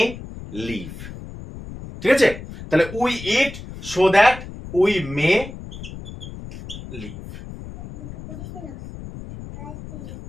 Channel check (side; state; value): left; noise; rumble, 12 dB below the sound